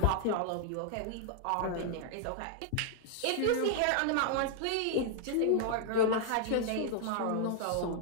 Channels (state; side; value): different; both; correlation -0.01